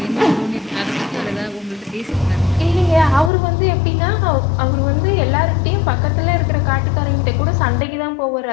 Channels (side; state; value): right; drops out; at 3.3 s